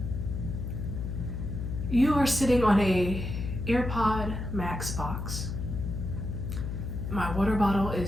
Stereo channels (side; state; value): left; noise; hum, 4 dB below the sound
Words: You are sitting on a AirPod Max box. My water bottle